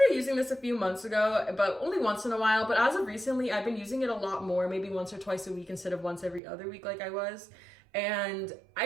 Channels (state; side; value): drops out; left; at 6.4 s